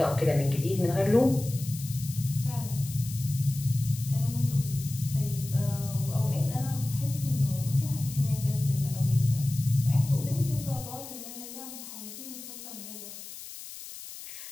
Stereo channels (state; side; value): noise; left; hiss, 12 dB below the sound